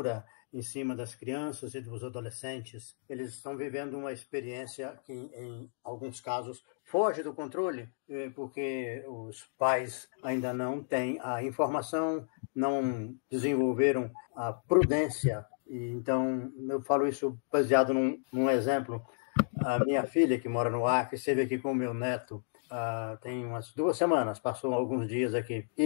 em cima das crianças e dos adolescentes. Eles estão vivendo uma experiência que, em alguns casos, foge do controle, porque os pais ainda não têm a informação, não desenvolveram a prudência. Então, eu falo isso baseado num exemplo. A minha filha, que mora no Acre, esteve aqui com o meu neto tem umas 2 semanas, passou alguns dias aqui.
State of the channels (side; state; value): right; silent; digital silence